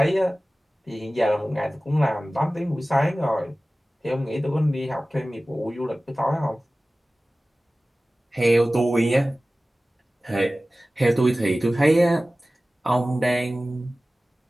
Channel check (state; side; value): normal; both; correlation 0.97